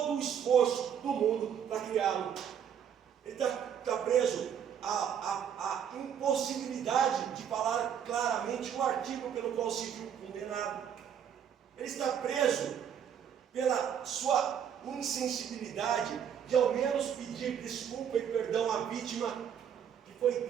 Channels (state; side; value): quieter; left; 8.5 dB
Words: o esforço do mundo para criá-lo. Ele está preso à impossibilidade de falar claramente o artigo pelo qual se viu condenado. Ele está preso pela sua insensibilidade de ao menos pedir desculpa e perdão à vítima que